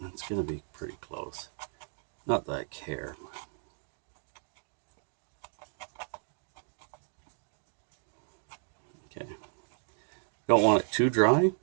it's going to be pretty close. Not that I care. Okay. Don't want it too dry,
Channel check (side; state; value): left; silent; 55 dB below the other